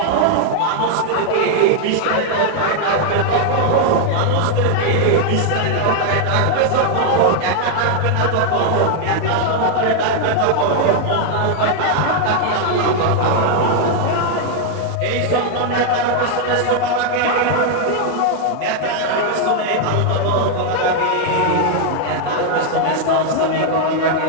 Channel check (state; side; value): different; both; correlation 0.00